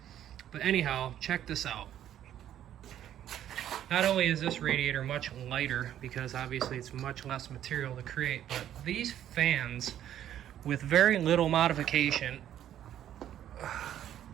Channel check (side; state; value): left; quieter; 11.1 dB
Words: But anyhow, check this out. Not only is this radiator much lighter, because obviously it's much less material to create, but these fans, with very little modification,